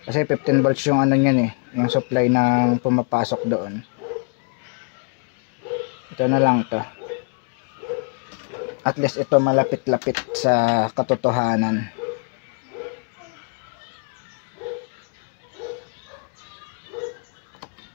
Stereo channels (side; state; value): right; quieter; 37.8 dB